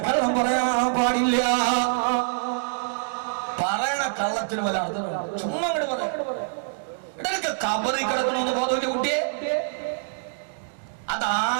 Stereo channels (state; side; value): silent; left; digital silence